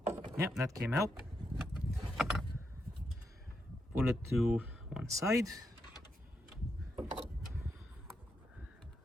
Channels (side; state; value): both; normal; correlation 0.83